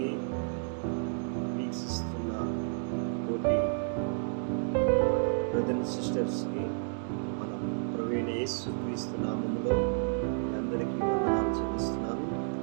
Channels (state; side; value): silent; left; digital silence